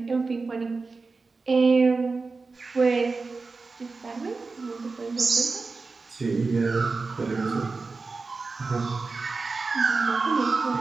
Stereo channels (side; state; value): left; quieter; 4.1 dB